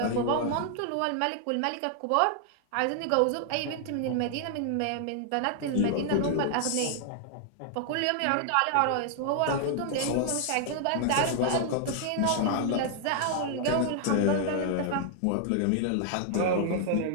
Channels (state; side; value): different; both; correlation 0.00